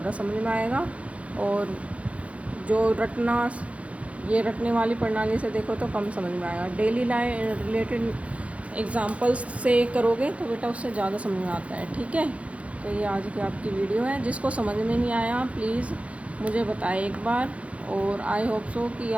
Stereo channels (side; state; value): left; late; 0.064 ms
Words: समझ में आएगा। और जो रटने वाली प्रणाली से देखो तो कम समझ में आएगा। डेली लाइफ रिलेटेड एग्ज़ाम्पल्स से करोगे तो बेटा उससे ज़्यादा समझ में आता है। ठीक है, तो ये आज की आपकी वीडियो है। जिसको समझ में नहीं आया प्लीज़ मुझे बताएं एक बार, और आई होप सो कि